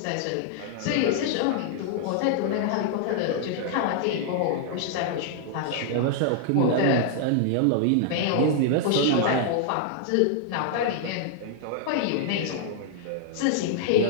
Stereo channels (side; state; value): both; different; correlation 0.00